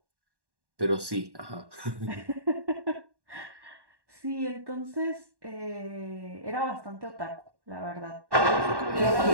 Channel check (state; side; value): late; left; 1.1 ms